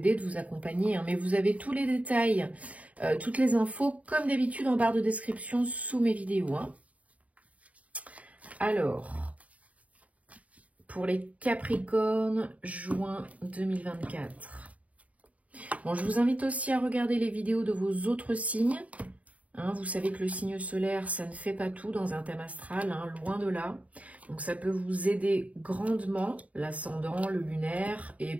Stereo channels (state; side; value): late; left; 0.068 ms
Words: de vous accompagner, hein, mais vous avez tous les détails, toutes les infos, comme d'habitude, en barre de description sous mes vidéos. Hein. Alors, pour les Capricornes, juin 2024. Bon, je vous invite aussi à regarder les vidéos de vos autres signes. Hein, vous savez que le signe solaire, ça ne fait pas tout dans un thème astral, hein, loin de là. Donc ça peut vous aider grandement, l'ascendant, le lunaire et